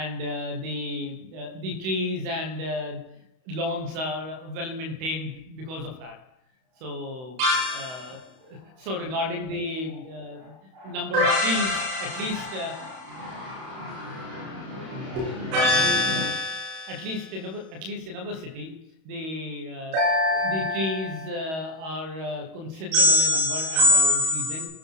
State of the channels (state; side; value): late; left; 31 ms